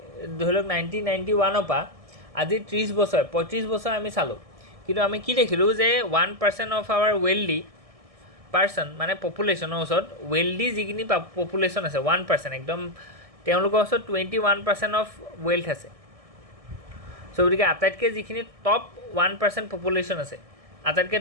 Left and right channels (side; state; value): left; late; 1.6 ms